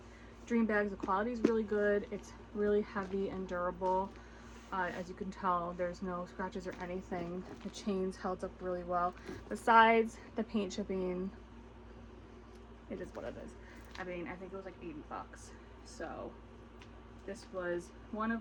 dream bags. The quality is really good. It's really heavy and durable. As you can tell, there's no scratches or anything. The chains held up really well. Besides the paint chipping, it is what it is. I mean, I think it was like 80 bucks. So this was one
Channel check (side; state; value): both; identical; correlation 1.00